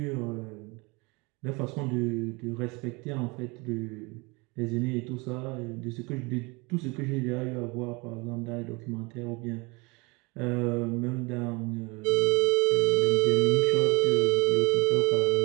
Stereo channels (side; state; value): left; quieter; 27.1 dB